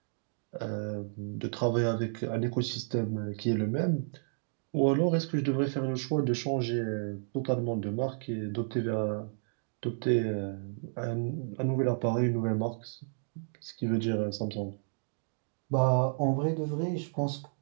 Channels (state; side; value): silent; left; digital silence